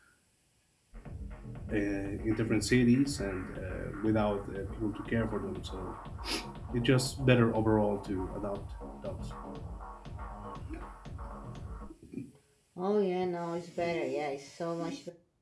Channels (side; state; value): both; identical; correlation 1.00